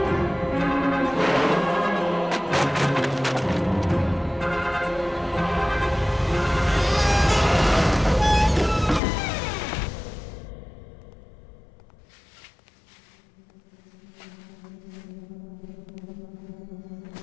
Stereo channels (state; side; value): drops out; right; at 9.0 s